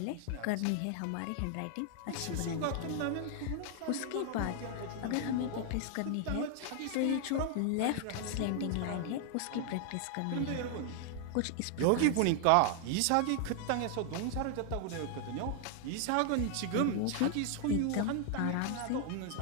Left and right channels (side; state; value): both; different; correlation 0.00